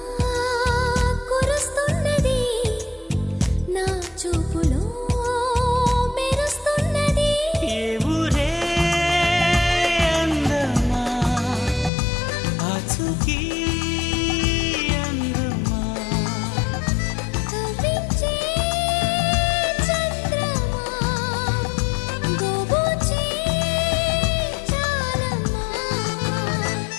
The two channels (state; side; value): drops out; right; at 11.9 s